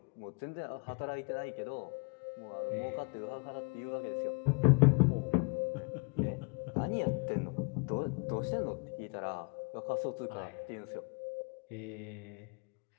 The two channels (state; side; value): quieter; right; 35.1 dB